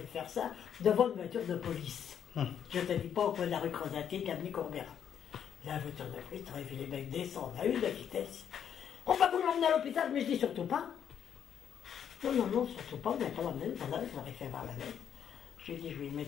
faire ça, devant une voiture de police. Je ne te dis pas au coin de la rue Crozatier, Camille Courbera. La voiture de police, tu aurais vu les mecs descendre à une de vitesse. On va vous l'emmener à l'hôpital, mais je dis surtout pas. Non, non, non, surtout pas, on n'a pas l'emmener, voilà, je l'aurais fait voir la lettre. Je lui ai dit, je vais lui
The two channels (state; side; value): quieter; right; 8.7 dB